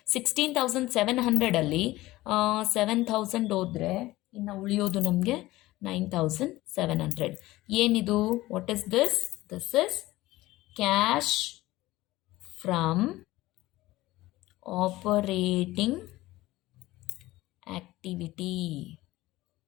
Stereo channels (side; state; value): right; quieter; 17.8 dB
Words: 16,700 7,000 ಹೋದರೆ ಇನ್ನು ಉಳಿಯೋದು ನಮಗೆ 9,700. ಏನಿದು? What is this? This is cash from operating activity.